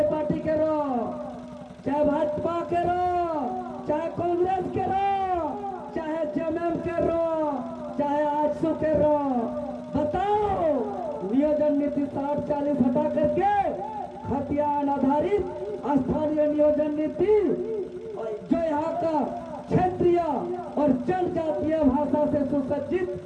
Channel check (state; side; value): identical; both; correlation 1.00